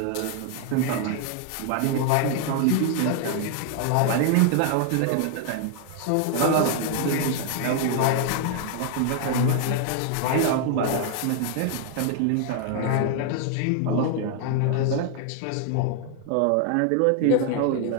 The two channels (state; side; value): different; both; correlation 0.00